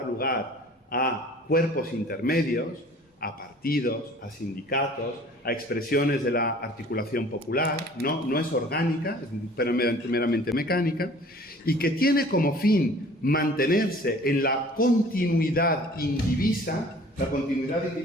lugar a cuerpos intermedios, a partidos, a sindicatos, a expresiones de la articulación popular, no es orgánica, es meramente mecánica, y que tiene como fin mantenerse en la continuidad indivisa. La continuidad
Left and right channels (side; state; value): both; normal; correlation 0.49